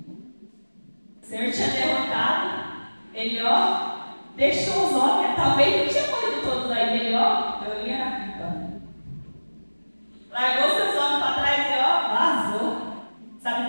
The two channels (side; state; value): both; inverted; correlation -1.00